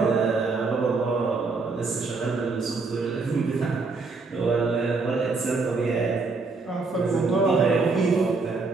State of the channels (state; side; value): quieter; left; 4.1 dB